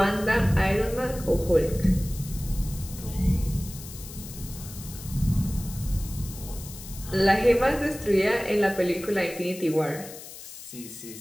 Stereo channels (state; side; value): noise; left; hiss, 14 dB below the sound